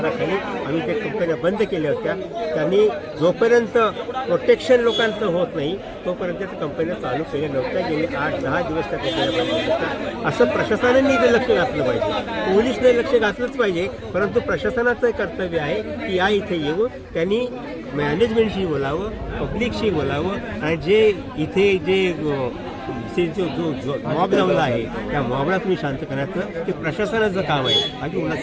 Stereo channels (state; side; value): identical; both; correlation 1.00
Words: आम्ही त्या कंपन्या बंद केल्या होत्या. त्यांनी जोपर्यंत प्रोटेक्शन लोकांचं होत नाही तोपर्यंत त्या कंपन्या चालू केल्या नव्हत्या. गेले 8-10 दिवस त्या कंपन्या बंद होत्या. असं प्रशासनाने इथे लक्ष घातलं पाहिजे. पोलीसने लक्ष घातलंच पाहिजे, परंतु प्रशासनाचं कर्तव्य आहे की या इथे येऊन त्यांनी मॅनेजमेंटशी बोलावं, पब्लिकशी बोलावं. आणि जे इथे जो मॉब जमला आहे त्या मॉबला तुम्ही शांत करायचं ते प्रशासनाचं काम आहे, बाकी